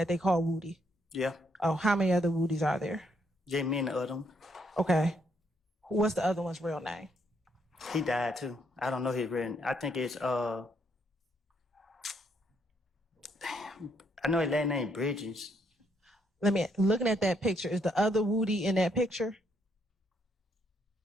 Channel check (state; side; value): normal; both; correlation 0.73